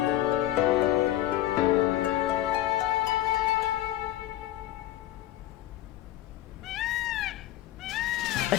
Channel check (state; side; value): quieter; right; 14.1 dB